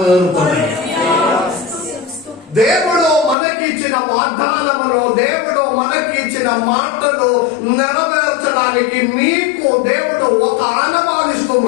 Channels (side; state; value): right; drops out; at 3.4 s